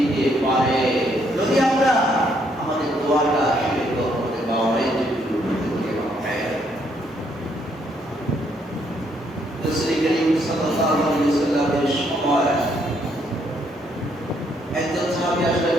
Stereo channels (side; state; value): both; normal; correlation 0.71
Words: পারে যদি আমরা আমাদের দোয়াটা শিরক করতে পারি। রাসূল করিম সাল্লাল্লাহু আলাইহি ওয়াসাল্লামের সময় একজন সাহাবী আসলেন,